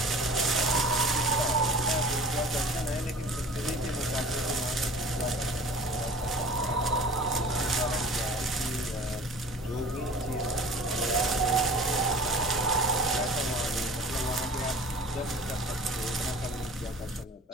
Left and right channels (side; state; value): both; normal; correlation 0.43